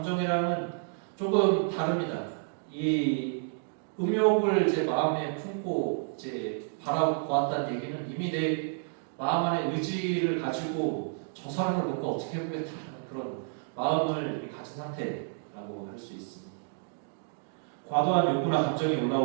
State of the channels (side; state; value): left; silent; digital silence